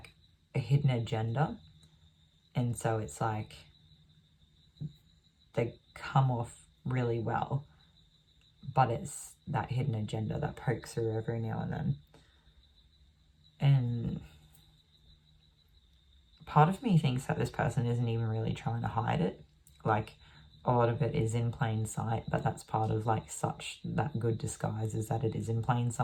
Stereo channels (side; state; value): both; identical; correlation 1.00